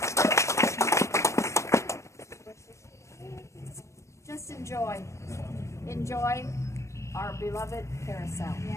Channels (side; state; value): right; late; 0.14 ms